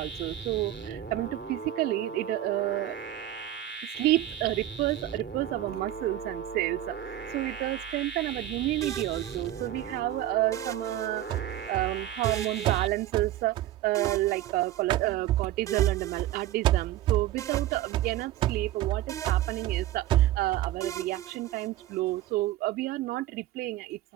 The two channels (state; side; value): quieter; left; 13.6 dB